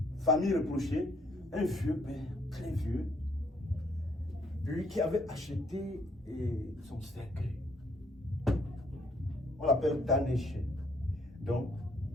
famille reprochée, un vieux père, très vieux, lui qui avait acheté son cercueil. On l'appelle Tanéché. Donc,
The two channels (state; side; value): normal; both; correlation 0.67